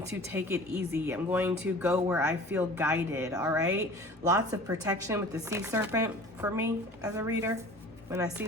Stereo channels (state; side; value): normal; both; correlation 0.44